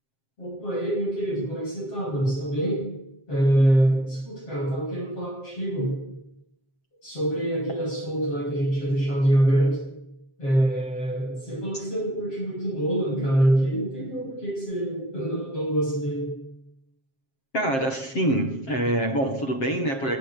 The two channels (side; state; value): right; late; 7.5 ms